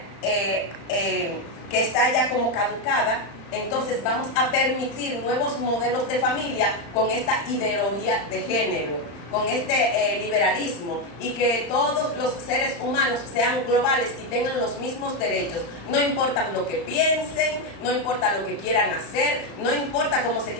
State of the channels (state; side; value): late; right; 35 ms